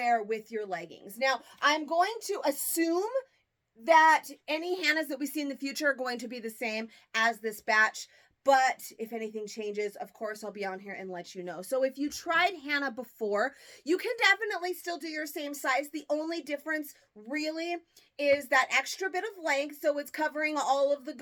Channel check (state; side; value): identical; both; correlation 1.00